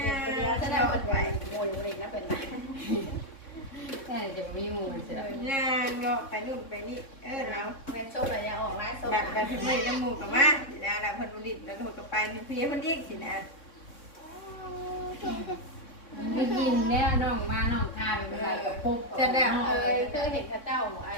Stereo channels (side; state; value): right; late; 3.6 ms